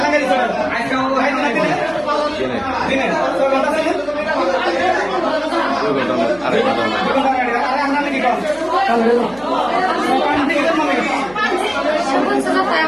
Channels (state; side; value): noise; right; hum, 23 dB below the sound